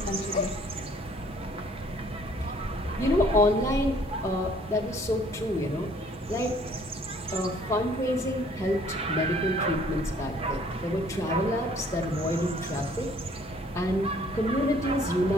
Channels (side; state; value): both; normal; correlation 0.58